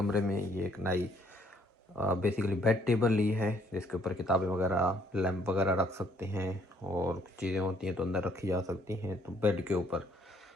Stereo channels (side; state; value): both; normal; correlation 0.65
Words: में ये एक नई बेसिकली बेड टेबल ली है, जिसके ऊपर किताबें वगैरह, लैंप वगैरह रख सकते हैं और कुछ चीज़ें होती हैं तो अंदर रखी जा सकती हैं। तो बेड के ऊपर